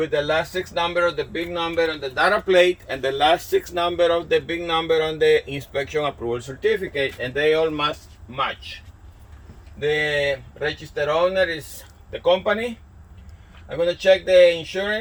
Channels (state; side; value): identical; both; correlation 1.00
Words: the last 6 number of the big number on the data plate and the last 6 number of the big number on the inspection approval certificate, and they all must match. The registered owner is the company. I'm gonna check the